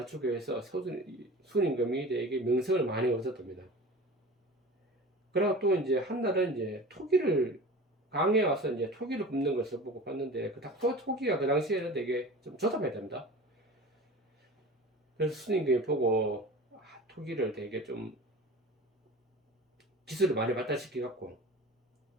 위해서 순임금이 되게 명성을 많이 얻었답니다. 그리고 또 이제 한날은 이제 토기를 강에 와서 이제 토기를 굽는 것을 보고 봤는데 토기가 그 당시에는 되게 좀 조잡했답니다. 그래서 순임금이 보고 토기를 되게 좀 기술을 많이 발달시켜 갖고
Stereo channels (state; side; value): normal; both; correlation 0.36